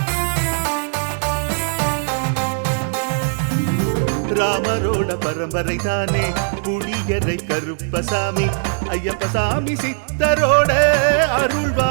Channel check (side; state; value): left; silent; digital silence